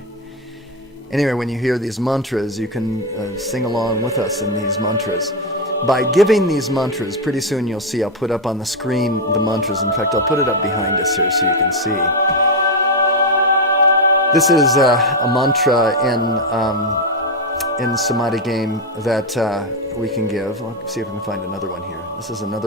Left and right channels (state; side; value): normal; both; correlation 0.07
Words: Anyway, when you hear these mantras, you can sing along with us in these mantras. By giving these mantras, pretty soon you'll see, I'll put up on the screen the mantras. In fact, I'll put it up behind us here so you can see. This is a mantra in Samadhi game that we can give. I'll see if I can find another one here. This is